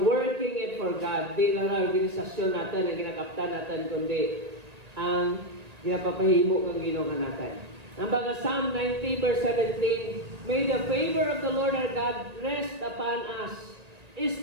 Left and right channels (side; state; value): left; late; 1.8 ms